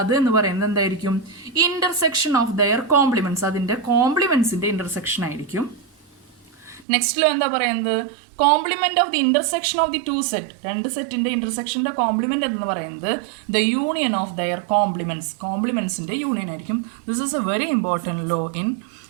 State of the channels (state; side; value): drops out; left; at 6.9 s